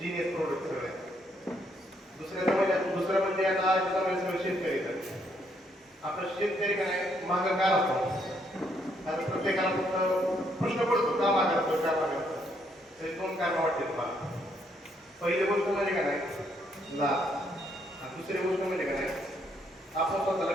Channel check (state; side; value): normal; both; correlation 0.72